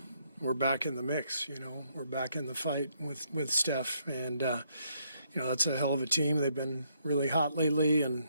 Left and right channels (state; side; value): inverted; both; correlation -0.73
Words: back in the mix. We're back in the fight with Steph, and that's a hell of a team. They've been really hot lately and